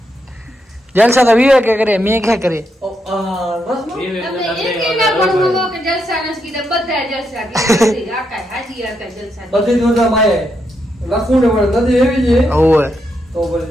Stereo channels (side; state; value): both; normal; correlation 0.81